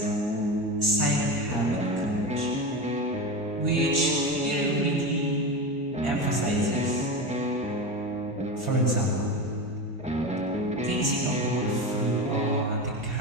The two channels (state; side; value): normal; both; correlation 0.22